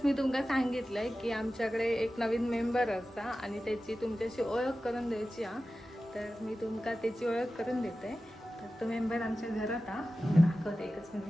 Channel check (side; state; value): both; normal; correlation 0.94